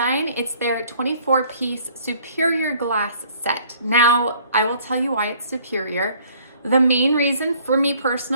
It's their 24-piece superior glass set. Now, I will tell you why it's superior. The main reason for me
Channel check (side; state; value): both; inverted; correlation -0.57